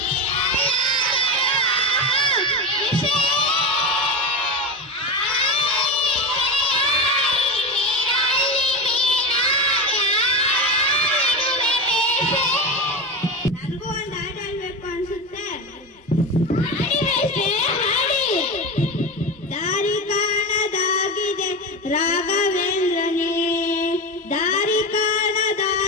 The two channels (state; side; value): normal; both; correlation 0.21